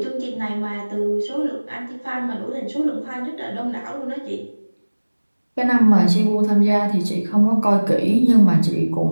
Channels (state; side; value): inverted; both; correlation -1.00